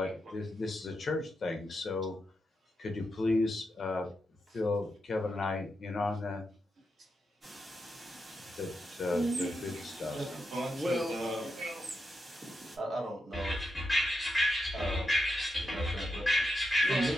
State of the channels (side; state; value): both; normal; correlation 0.86